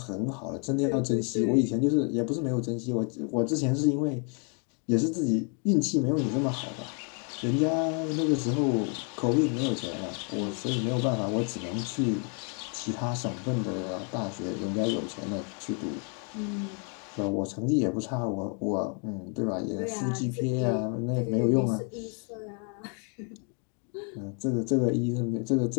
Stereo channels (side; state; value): right; quieter; 38.7 dB